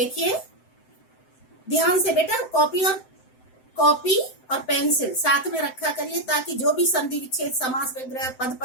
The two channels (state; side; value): late; right; 7.8 ms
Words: ध्यान से बेटा, कॉपी और पेंसिल साथ में रखा करिए ताकि जो भी संधि विच्छेद, समास विग्रह, पद